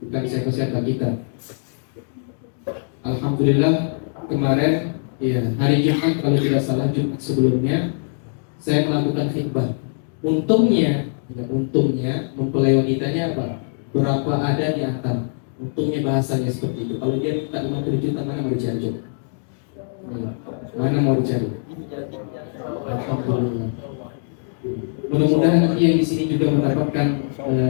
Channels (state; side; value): silent; right; digital silence